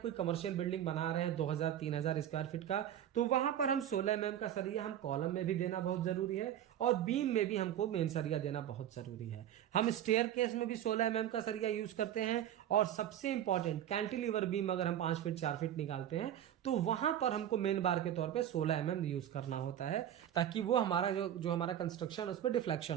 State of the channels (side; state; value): left; quieter; 10.9 dB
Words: कमर्शियल बिल्डिंग बना रहे हैं 2000-3000 स्क्वायर फीट का, तो वहां पर हम 16 mm का सरिया हम कॉलम में भी देना बहुत जरूरी है, और बीम में भी हमको मेन सरिया देना बहुत जरूरी है। हम स्टेयर केस में भी 16 mm का सरिया यूज करते हैं, और सबसे इंपॉर्टेंट कैंटिलीवर बीम अगर हम 5 फीट 4 फीट निकालते हैं, तो वहां पर हमको मेन बार के तौर पर 16 mm यूज करना होता है, ताकि वो हमारा जो हमारा कंस्ट्रक्शन उसमें